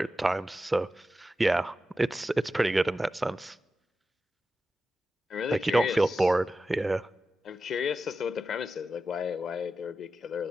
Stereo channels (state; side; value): normal; both; correlation 0.92